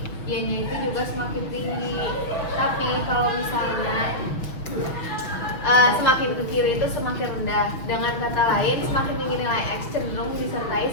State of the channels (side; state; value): right; late; 6.2 ms